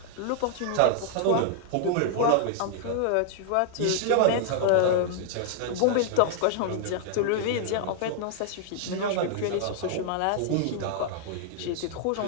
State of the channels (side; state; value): both; different; correlation -0.01